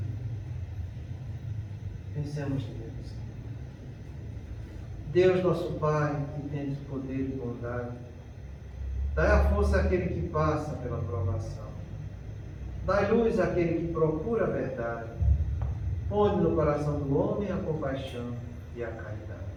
Pensemos neles. Deus nosso Pai, que tens poder e bondade, dai a força àquele que passa pela provação. Dai luz àquele que procura a verdade. Põe no coração do homem a compaixão e a caridade.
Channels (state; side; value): identical; both; correlation 1.00